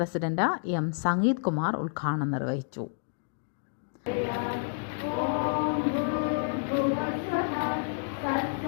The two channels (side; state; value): right; silent; digital silence